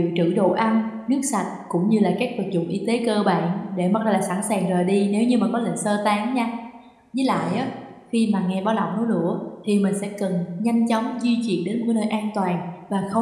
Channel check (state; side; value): identical; both; correlation 1.00